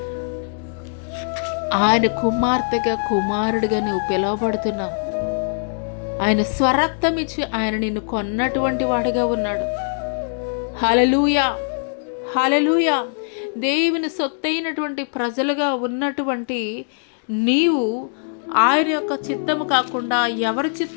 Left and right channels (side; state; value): right; silent; digital silence